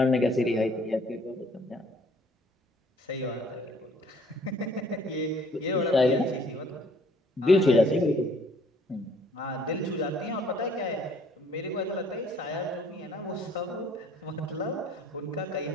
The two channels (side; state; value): both; normal; correlation 0.59